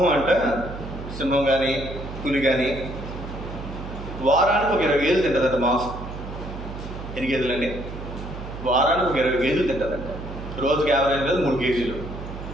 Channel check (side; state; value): right; noise; hum, 10 dB below the sound